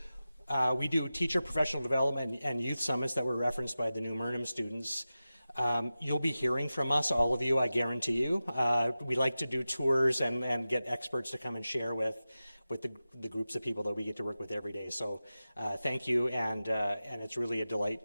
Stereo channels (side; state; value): both; inverted; correlation -0.94